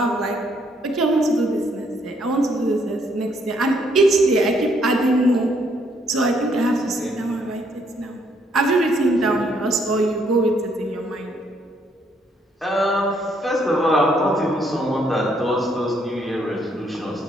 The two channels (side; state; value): both; normal; correlation 0.70